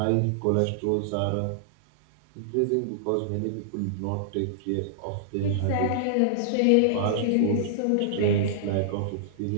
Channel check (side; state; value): both; different; correlation -0.01